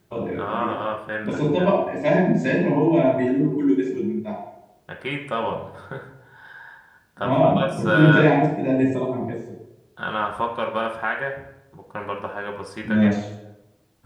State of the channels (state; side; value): identical; both; correlation 1.00